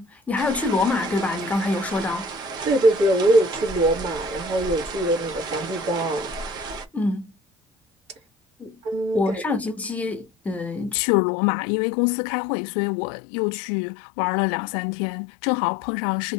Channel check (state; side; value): drops out; right; at 11.0 s